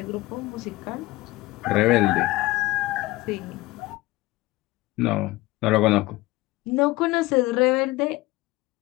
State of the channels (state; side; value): quieter; right; 19.7 dB